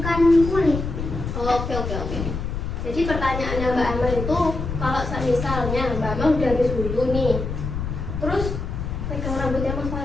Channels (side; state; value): left; noise; rumble, 5 dB below the sound